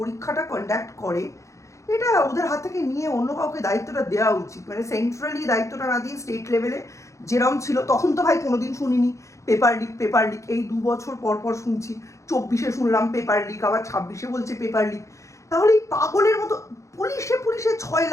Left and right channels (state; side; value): late; right; 0.15 ms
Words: কন্ডাক্ট করে, এটা ওদের হাত থেকে নিয়ে অন্য কাউকে দায়িত্বটা দেওয়া উচিত। মানে সেন্ট্রালি দায়িত্বটা না দিয়ে স্টেট লেভেলে যেরকম ছিল, তখন তো ভাই কোনোদিন শুনিনি পেপার লিক, এই 2 বছর পর পর শুনছি। 24-এ শুনলাম পেপার লিক, আবার 26-এ বলছে পেপার লিক। তাহলে এই পাগলের মতো পুলিশে 6